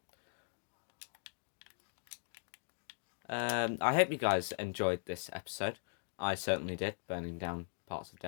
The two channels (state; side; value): silent; right; digital silence